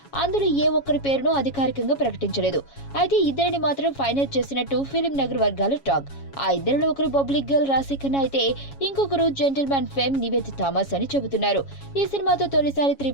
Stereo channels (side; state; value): right; late; 7.2 ms